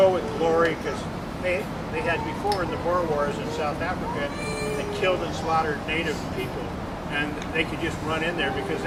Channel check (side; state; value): both; identical; correlation 1.00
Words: with glory, because they had before in the Boer Wars in South Africa, they killed and slaughtered native people, and they could just run in there because